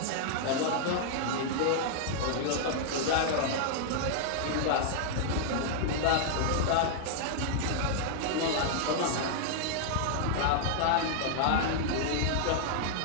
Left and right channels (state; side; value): different; both; correlation -0.01